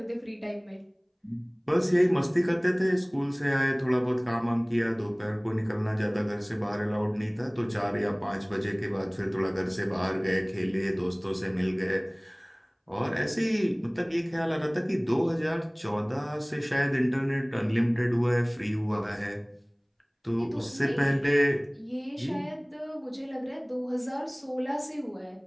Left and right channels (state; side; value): identical; both; correlation 1.00